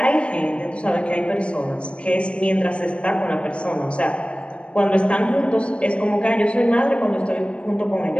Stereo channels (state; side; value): late; right; 0.058 ms